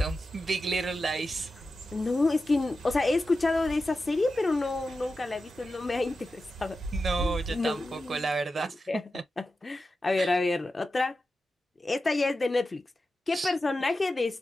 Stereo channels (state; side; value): normal; both; correlation 0.92